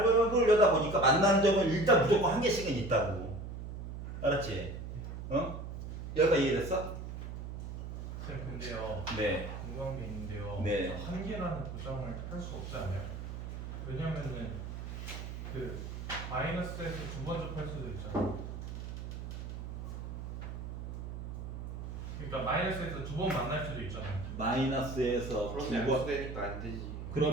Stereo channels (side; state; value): right; noise; hum, 7 dB below the sound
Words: 보니까 만나는 점은 일단 무조건 한 개씩은 있다고. 알았지? 여기가 이해됐어? 쌤 근데요. 네. 궁금한 게 있는데요. 네. 한 개라는 보장을 할 수 없지 않아요? 왜냐면은 그 마이너스에서 2번 접할 수도 있잖아요. 그러니까 마이너스에서 2번 만날 수도 있잖아요. 마이너스에서 그럼 2번. 양수되니까 안 되지.